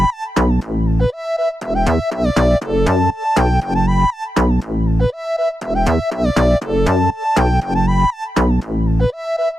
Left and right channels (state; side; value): normal; both; correlation 0.91